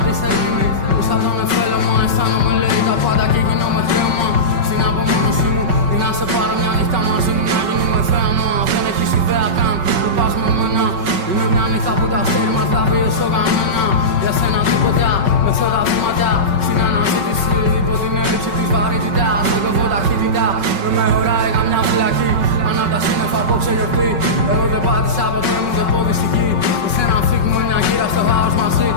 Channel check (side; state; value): left; late; 5.3 ms